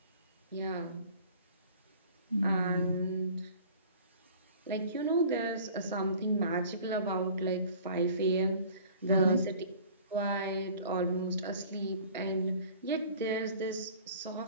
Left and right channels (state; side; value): inverted; both; correlation -0.47